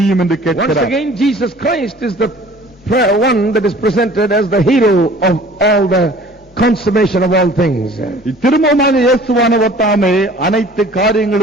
என்று Once கேட்கிறார். again, Jesus Christ is the one that is presented as the hero of all the consummation of all things. திரும்பமாக இயேசுவானவர் தாமே அனைத்து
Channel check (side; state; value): both; normal; correlation 0.49